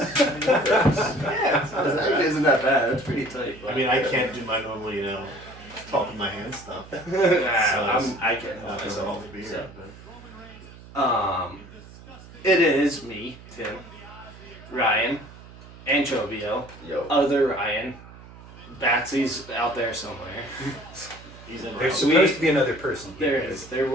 it actually isn't that bad. It's pretty tight. I mean, I can't do my normal, talk with my hands stuff. I can't help Not myself. all the beer, So. but It is me, Tim, Ryan, Anchovio, yo, other Ryan. Batsy's out there somewhere. he's in. There's Route, supposed to be another person here. There is. There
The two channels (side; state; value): right; noise; hum, 19 dB below the sound